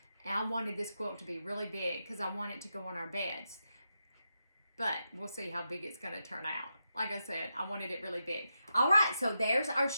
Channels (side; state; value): both; inverted; correlation -0.86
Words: And I wanted this quilt to be really big because I want it to go on our beds. But we'll see how big it's going to turn out. Like I said, I wanted it really big. All right, so there's our